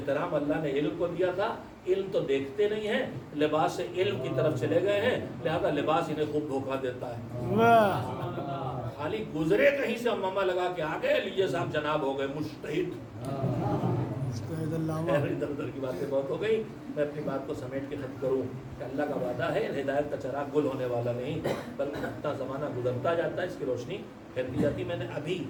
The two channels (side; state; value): both; identical; correlation 1.00